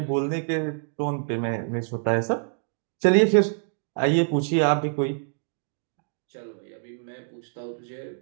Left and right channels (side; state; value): left; silent; digital silence